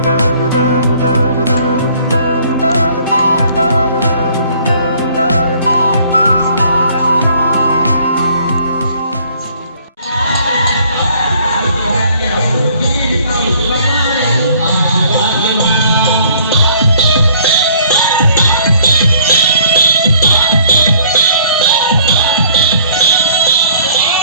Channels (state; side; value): inverted; both; correlation -0.58